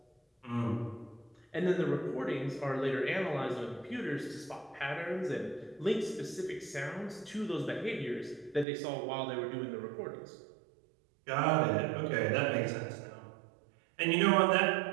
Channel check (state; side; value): drops out; left; at 8.7 s